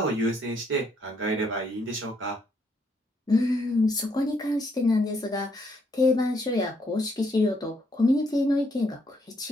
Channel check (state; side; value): normal; both; correlation 0.72